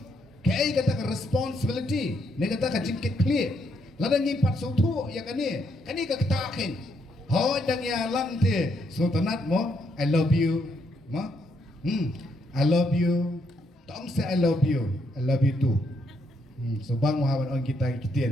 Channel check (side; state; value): both; normal; correlation 0.75